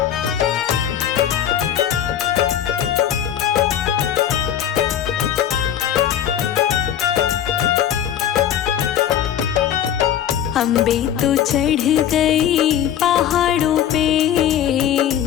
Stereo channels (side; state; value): right; quieter; 10.2 dB